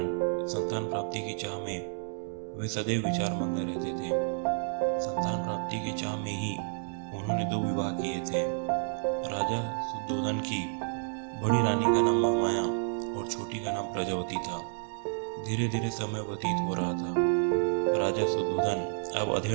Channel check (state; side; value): silent; left; digital silence